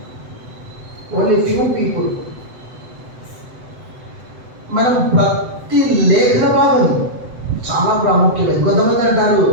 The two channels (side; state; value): left; late; 7.9 ms